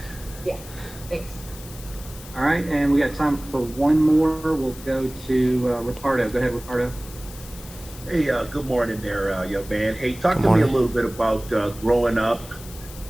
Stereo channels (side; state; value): left; noise; hiss, 17 dB below the sound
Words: Yeah, thanks. All right, and we got time for one more. We'll go to Ricardo. Go ahead, Ricardo. Hey, good morning there, young man. Hey, talk to me a little bit about growing up